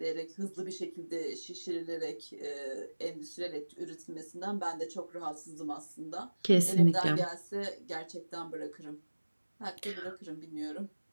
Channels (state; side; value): inverted; both; correlation -1.00